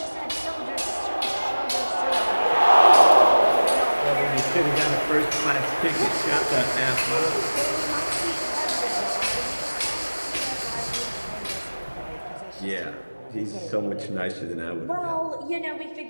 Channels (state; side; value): inverted; both; correlation -1.00